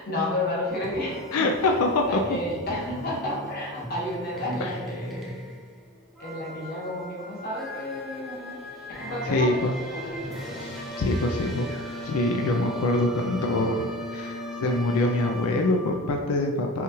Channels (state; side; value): normal; both; correlation 0.31